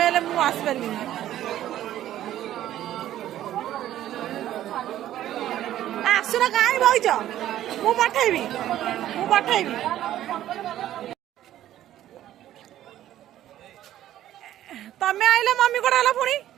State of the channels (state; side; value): quieter; left; 12.7 dB